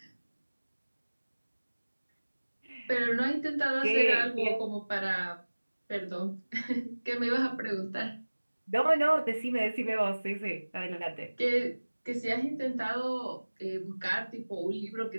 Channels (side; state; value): both; inverted; correlation -1.00